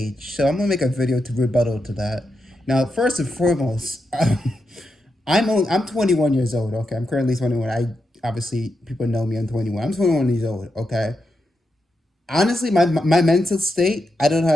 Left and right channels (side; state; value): both; normal; correlation 0.86